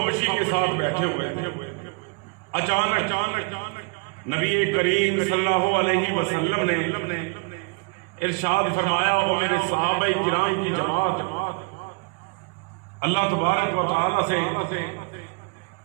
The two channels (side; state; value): left; quieter; 31.8 dB